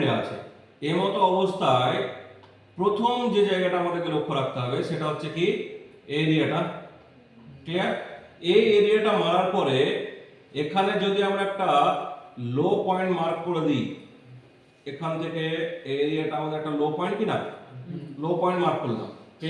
আছে, এই মতো অবস্থায় প্রথম যে জায়গাটা আমাদেরকে লক্ষ্য রাখতে হবে সেটা হচ্ছে কি? এরিয়াটা, ক্লিয়ার? এই এরিয়াটা মারার পরে এখানে যদি আমরা একটা লো পয়েন্ট মার্ক করে দিই, এখান থেকে এই এরিয়াটা আমাদের একটা লো পয়েন্ট কি না? লো পয়েন্ট মার্ক করলাম,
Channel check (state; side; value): identical; both; correlation 1.00